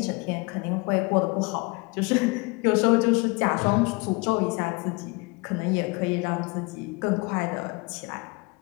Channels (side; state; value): right; quieter; 27.5 dB